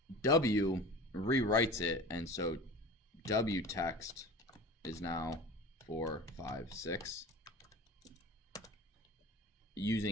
W rewrites it, and so W text is now 4, 5, 6.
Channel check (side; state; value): both; normal; correlation 0.37